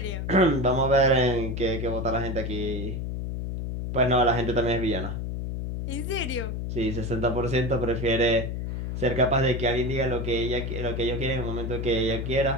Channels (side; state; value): left; noise; hum, 4 dB below the sound